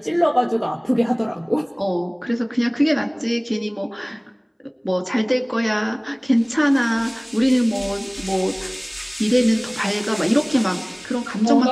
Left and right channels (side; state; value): both; identical; correlation 1.00